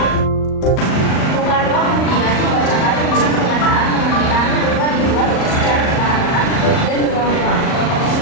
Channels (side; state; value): right; late; 38 ms